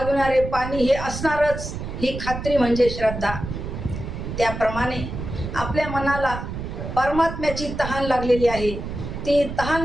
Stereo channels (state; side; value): noise; right; rumble, 7 dB below the sound